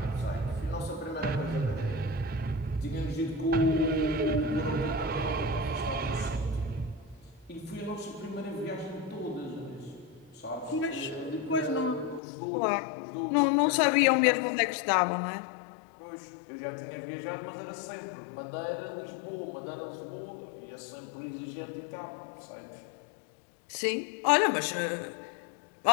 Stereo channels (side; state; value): right; drops out; at 12.2 s